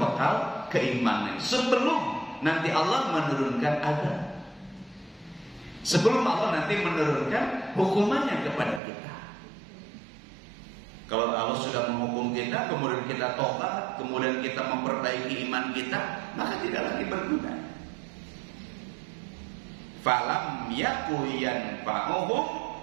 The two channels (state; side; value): drops out; left; at 8.8 s